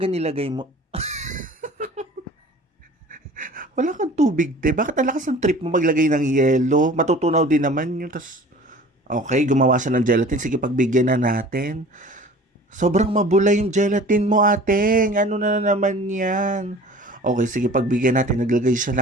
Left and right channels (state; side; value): normal; both; correlation 0.44